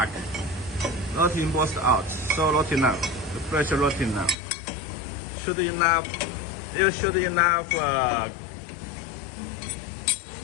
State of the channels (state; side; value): drops out; right; at 4.4 s